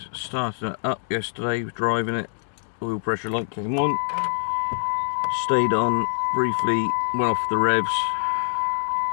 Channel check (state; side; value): silent; right; digital silence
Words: started it up yesterday, was driving it, oil pressure light came on, stayed on briefly, went off the revs,